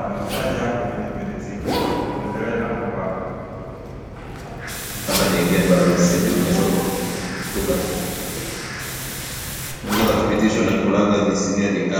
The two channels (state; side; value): identical; both; correlation 1.00